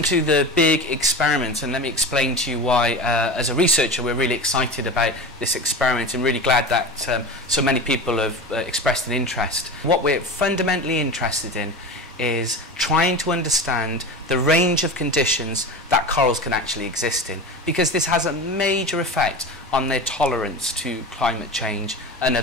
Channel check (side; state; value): both; normal; correlation 0.29